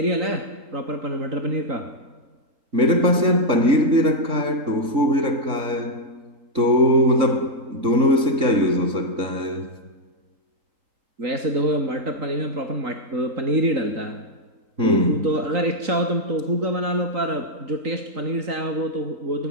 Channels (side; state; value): left; late; 3.6 ms